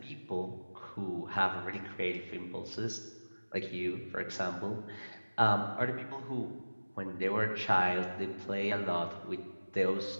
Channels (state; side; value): inverted; both; correlation -1.00